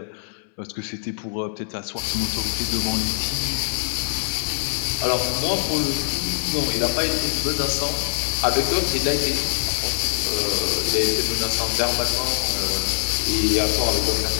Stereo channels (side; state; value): right; silent; 63 dB below the other